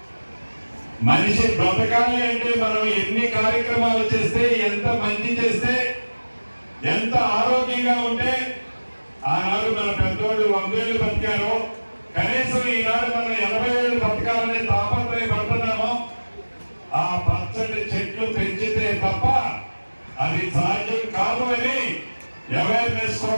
మనిషి బ్రతకాలి అంటే మనం ఎన్ని కార్యక్రమాలు చేస్తే, ఎంత మంచి చేస్తే, ఎంత ఆరోగ్యంగా ఉంటే, ఆనాడు మన పెద్దోళ్ళు 100 ఏళ్ళు బతికారో, కనీసం ఈనాడు మనం 80 ఏళ్ళు బతకాలని తాపత్రయపడుతున్నామో, ఆ పచ్చటి చెట్లు పెంచితే తప్ప అది సాధ్యం కాదు అని అవేర్నెస్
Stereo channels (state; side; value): inverted; both; correlation -1.00